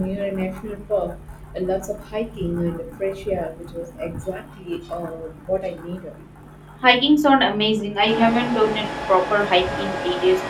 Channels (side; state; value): both; identical; correlation 1.00